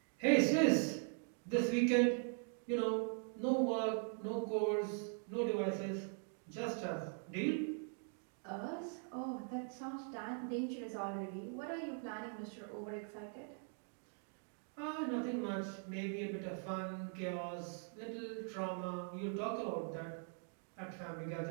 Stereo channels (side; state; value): left; silent; 50 dB below the other